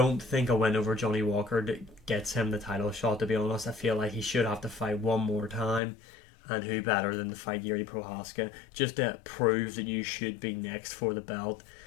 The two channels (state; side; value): drops out; right; at 5.8 s